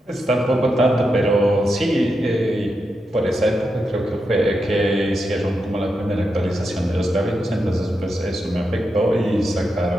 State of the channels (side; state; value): both; normal; correlation 0.86